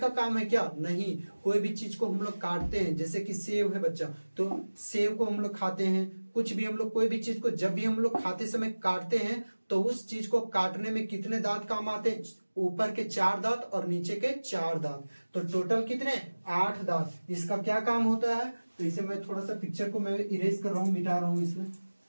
काम है क्या, नहीं। कोई भी चीज को हम लोग काटते हैं, जैसे कि सेव है बच्चा, तो सेव को हम लोग खाते हैं। कुछ भी हम लोग, कोई भी चीज को जब भी हम लोग खाते समय काटते हैं, तो उस चीज को काटने में कितने दांत काम आते हैं, ऊपर के 4 दांत और नीचे के 4 दांत। तो टोटल कितने, 8 दांत। इसका क्या काम होता है, तो इसे मैं थोड़ा सा पिक्चर को मैं इरेज कर रहा हूँ, मिटा रहा हूँ इसमें।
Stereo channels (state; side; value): inverted; both; correlation -1.00